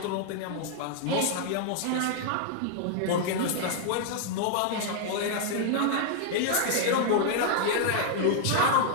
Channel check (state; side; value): different; both; correlation -0.01